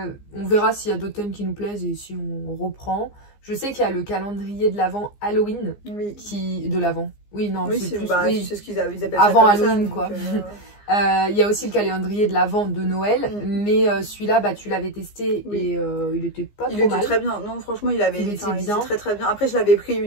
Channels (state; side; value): late; right; 15 ms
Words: verra s'il y a d'autres thèmes qui nous plaisent et si on reprend. Je sais qu'il y a le calendrier de l'Avent Halloween de l'Avent. Oui, non, c'est plus... c'est ce qu'ils appellent avant ça Halloween, quoi. Il y a aussi le calendrier de l'Avent de Noël, mais celui-là, tu l'avais testé et il était pas trop mal. Il était très bien. Non, franchement, il était très très bien. Après, je l'avais pris